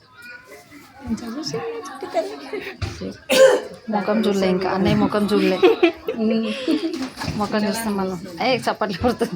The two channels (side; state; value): both; identical; correlation 1.00